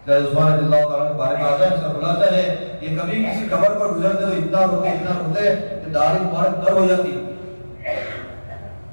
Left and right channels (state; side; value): inverted; both; correlation -1.00